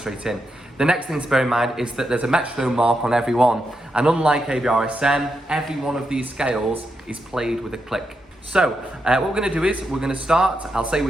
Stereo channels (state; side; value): normal; both; correlation 0.84